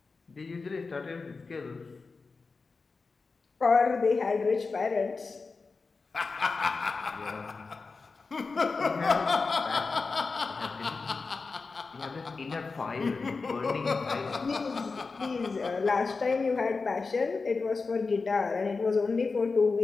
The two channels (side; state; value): right; quieter; 4.3 dB